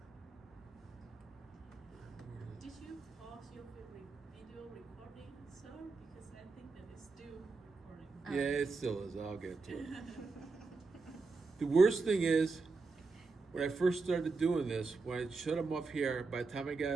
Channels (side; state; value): left; quieter; 4.1 dB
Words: Did you pause your video recording, sir? Because I think that it's still recording. Yeah, it still is. I'll get to it. The worst thing is, when I first started doing this, when I shut them off here, by the time I